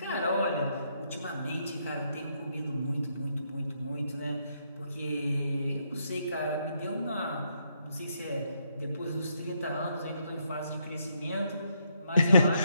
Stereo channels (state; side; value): inverted; both; correlation -0.75